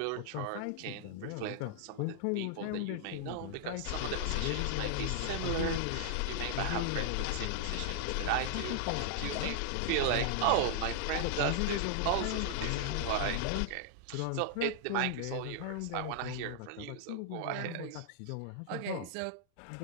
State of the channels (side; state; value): both; different; correlation -0.01